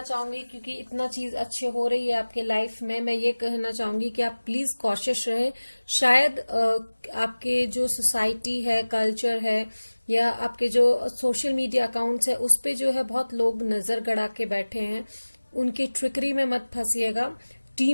चाहूंगी, क्योंकि इतना चीज अच्छे हो रही है आपके लाइफ में, मैं ये कहना चाहूंगी कि आप प्लीज कॉशियस रहे. शायद आपके जो सोसाइटी है, कल्चर है, या आपके जो सोशल मीडिया अकाउंट्स है, उस पे जो है बहुत लोग नजर गड़ा के बैठे हैं. उनकी ट्रिकरी में मत फंसिएगा.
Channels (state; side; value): inverted; both; correlation -1.00